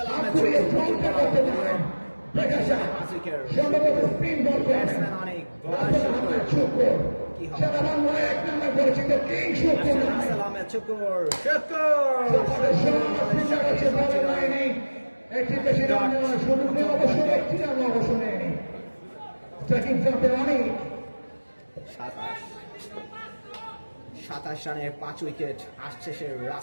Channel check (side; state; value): both; inverted; correlation -1.00